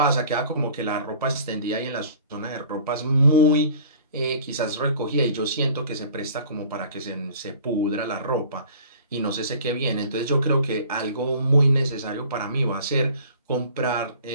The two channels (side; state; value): both; inverted; correlation -0.47